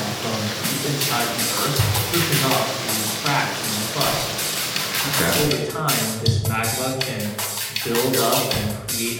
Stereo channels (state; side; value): identical; both; correlation 1.00